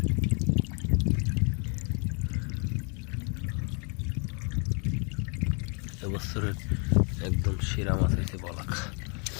এবছরের একদম সেরা মাছ হয়েছে বলাকা।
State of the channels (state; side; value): quieter; right; 37.1 dB